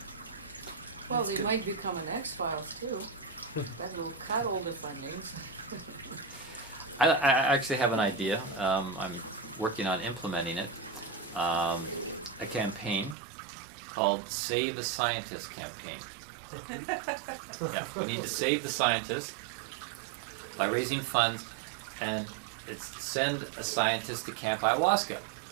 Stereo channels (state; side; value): drops out; left; at 13.2 s